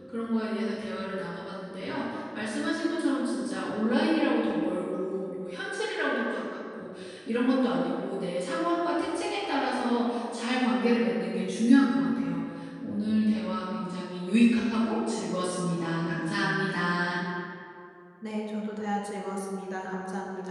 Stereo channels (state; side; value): identical; both; correlation 1.00